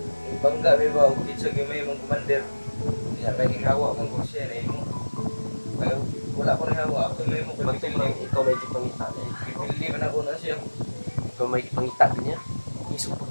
Bangga may ba, ukit sa gimay mong commander. Kaya kaging hawa mong ko siya na mo. Kaya wala ko rin hawa, ako may mo kapipili. Ikaw may pangita niya. Pipili man ako na siya. Ikaw may pangita niya. Iso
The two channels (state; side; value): inverted; both; correlation -1.00